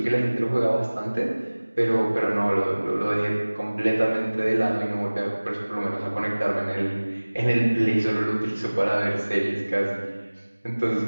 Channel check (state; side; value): inverted; both; correlation -1.00